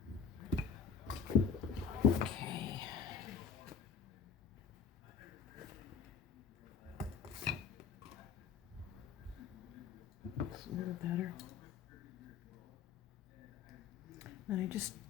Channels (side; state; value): right; quieter; 6.4 dB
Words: Okay. It's a little better. And I just